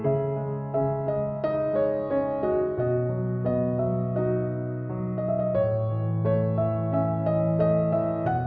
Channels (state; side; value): identical; both; correlation 1.00